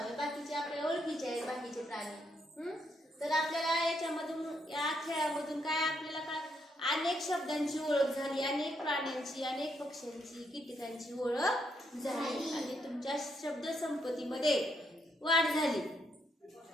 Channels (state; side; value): normal; both; correlation 0.76